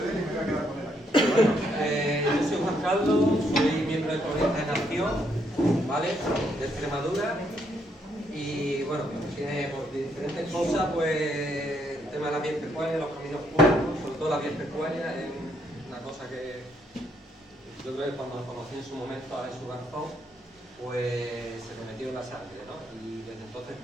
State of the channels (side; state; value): both; normal; correlation 0.73